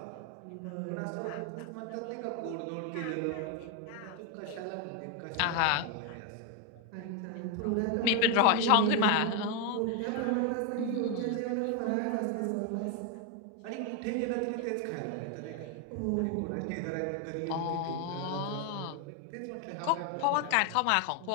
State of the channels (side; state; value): both; different; correlation 0.01